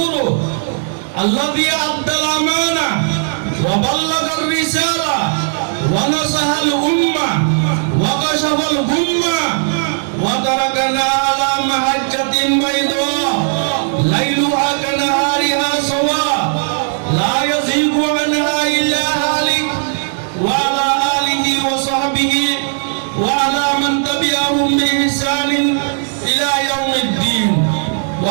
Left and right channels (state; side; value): silent; left; digital silence